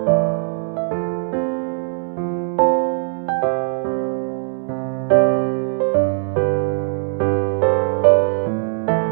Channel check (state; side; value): silent; left; digital silence